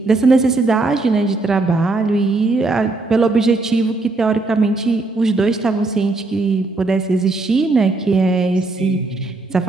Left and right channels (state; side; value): quieter; left; 3.3 dB